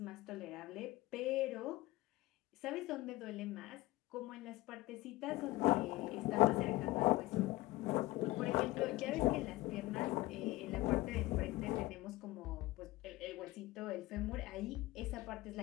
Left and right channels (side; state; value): right; quieter; 18.9 dB